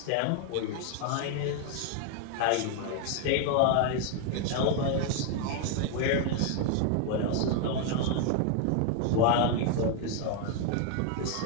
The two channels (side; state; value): both; different; correlation 0.00